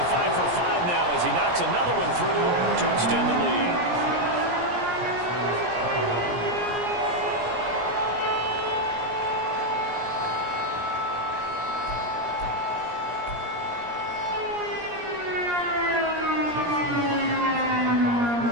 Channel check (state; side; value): late; left; 17 ms